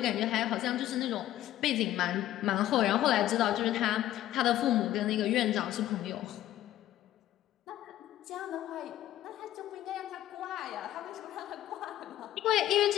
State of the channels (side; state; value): right; quieter; 13.4 dB